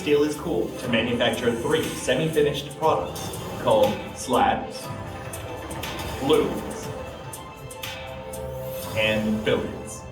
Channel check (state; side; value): identical; both; correlation 1.00